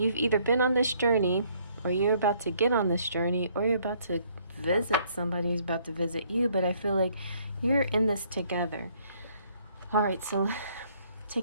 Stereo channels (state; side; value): inverted; both; correlation -0.65